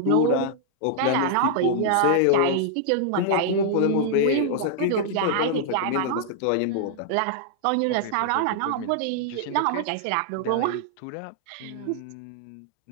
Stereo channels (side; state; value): both; different; correlation -0.01